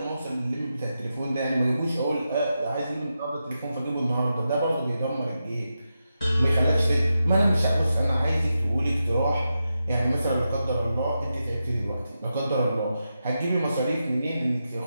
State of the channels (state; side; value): inverted; both; correlation -0.89